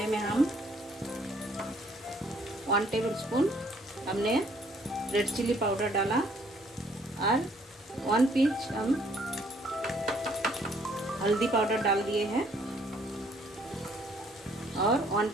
में हम 1 टेबलस्पून हमने रेड चिली पाउडर डाला और 1 पिंच हम हल्दी पाउडर डाल दिए हैं और 1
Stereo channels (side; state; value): both; normal; correlation 0.63